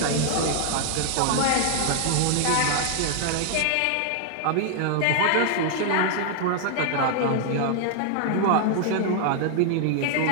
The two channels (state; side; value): different; both; correlation 0.00